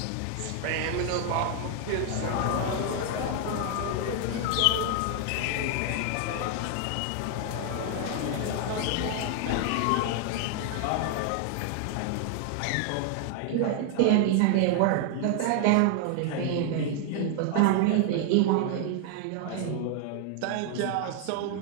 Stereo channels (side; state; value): both; different; correlation 0.00